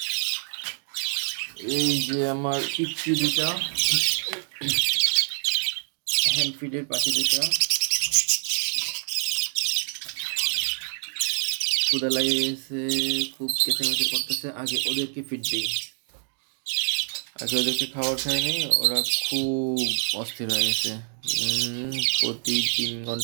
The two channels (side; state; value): left; silent; 56 dB below the other